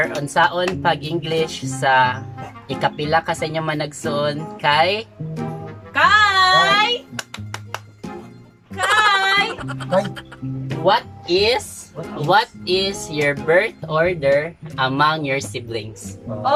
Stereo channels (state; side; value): identical; both; correlation 1.00